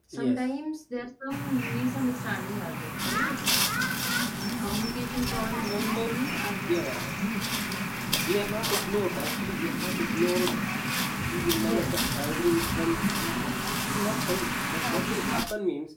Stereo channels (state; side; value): identical; both; correlation 1.00